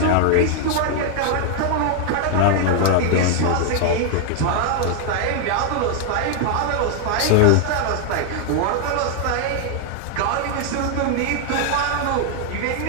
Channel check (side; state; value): both; different; correlation 0.00